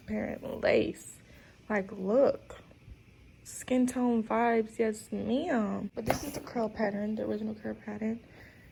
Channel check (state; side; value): identical; both; correlation 1.00